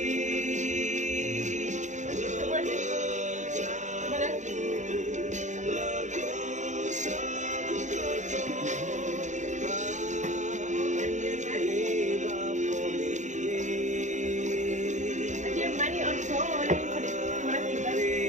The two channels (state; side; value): late; left; 0.35 ms